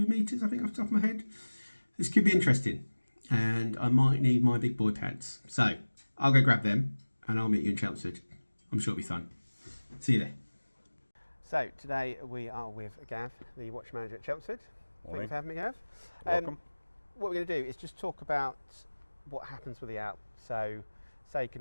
metres, I think, off the top of my head, this could be interesting, and I might need my big boy pads. So I'll go grab them and I'll meet you in Chelmsford. I'm sure it'll be fun. See you there. So today we are with Gav, the watch manager at Chelmsford. Thank you for having me, Gav. Welcome. What we're going to do is just talk about what happens with the ALP. So say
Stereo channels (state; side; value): inverted; both; correlation -1.00